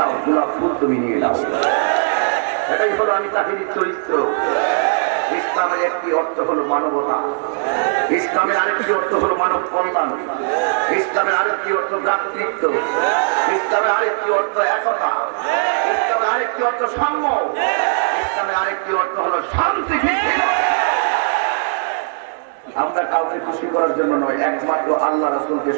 গোলাপ ফুল তুমি নিয়ে নাও। এটাই হলো আমি তাহিরির চরিত্র। ইসলামের একটি অর্থ হলো মানবতা, ইসলামের আরেকটি অর্থ হলো মানব কল্যাণ, ইসলামের আরেকটি অর্থ ভ্রাতৃত্ব, ইসলামের আরেকটি অর্থ একতা, ইসলামের আরেকটি অর্থ সাম্য, ইসলামের আরেকটি অর্থ হলো শান্তি ভিত্তিক। আমরা কাউকে খুশি করার জন্য নয়, একমাত্র আল্লাহ রাসূলকে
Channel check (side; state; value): left; silent; digital silence